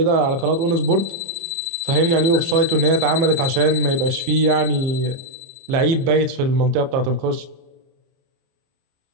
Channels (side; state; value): left; late; 30 ms